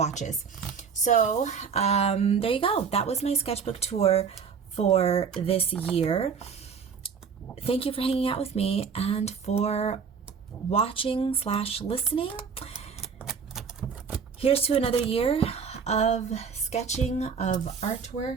So there you go. That was my sketchbook tour for this year. Thank you for hanging out with me and for watching/listening. Here's to another year of sketching, of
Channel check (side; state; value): left; quieter; 6.2 dB